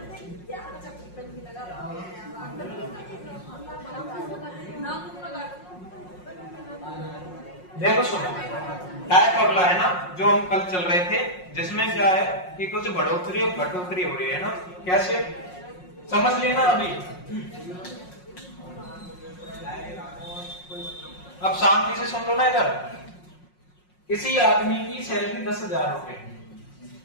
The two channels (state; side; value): late; right; 5.5 ms